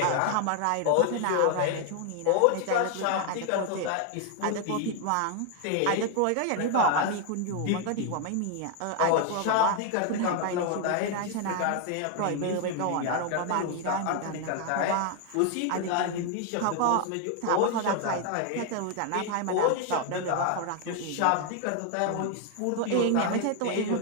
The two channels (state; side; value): different; both; correlation 0.00